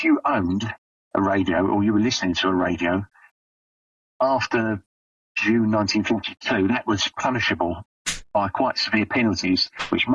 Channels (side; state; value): both; identical; correlation 1.00